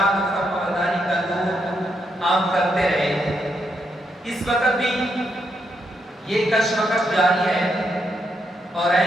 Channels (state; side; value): normal; both; correlation 0.80